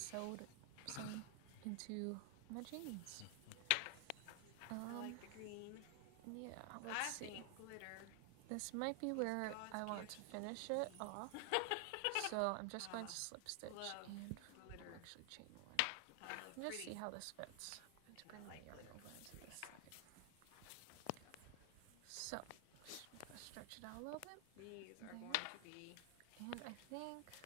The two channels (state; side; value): different; both; correlation 0.00